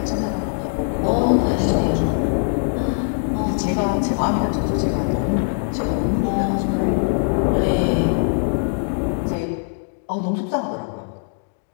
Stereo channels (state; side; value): silent; right; digital silence